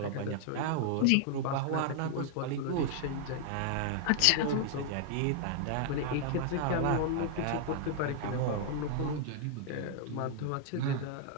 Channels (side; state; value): both; different; correlation 0.00